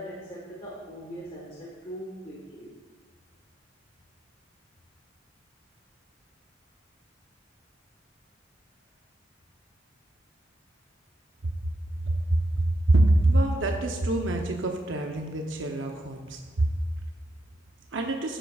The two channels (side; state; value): both; normal; correlation 0.84